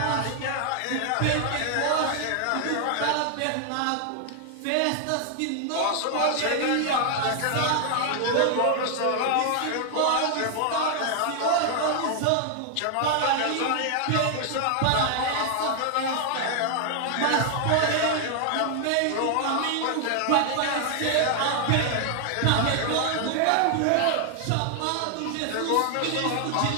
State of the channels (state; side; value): different; both; correlation 0.00